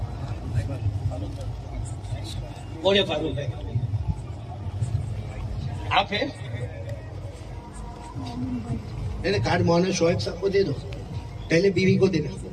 بولے فاروق ہے, آپ ہیں؟ کارڈ مولانا شعیب صاحب کو دے دو, پہلے بیوی کو دینا.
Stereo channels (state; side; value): identical; both; correlation 1.00